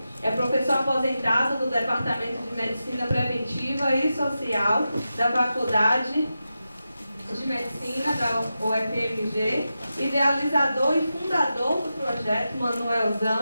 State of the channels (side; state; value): both; inverted; correlation -0.91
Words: é professor aposentado do Departamento de Medicina Preventiva e Social da Faculdade de Medicina da UFMG, idealizador e fundador do projeto